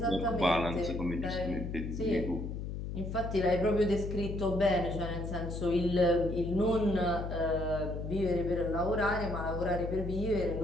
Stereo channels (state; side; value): noise; left; hum, 5 dB below the sound